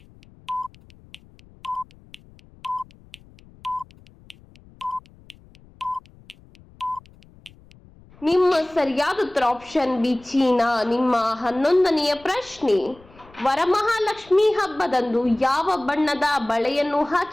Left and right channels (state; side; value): noise; left; rumble, 26 dB below the sound